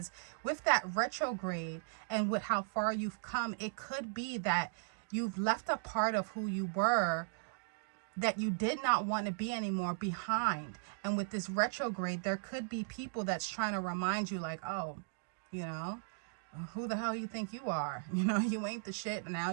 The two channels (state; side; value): silent; left; digital silence